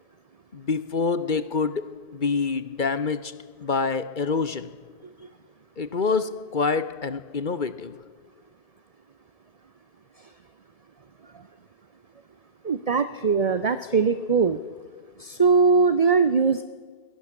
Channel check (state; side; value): late; right; 2.3 ms